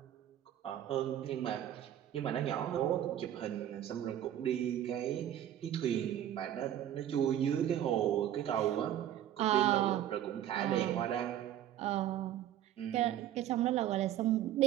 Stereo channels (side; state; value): left; quieter; 11.4 dB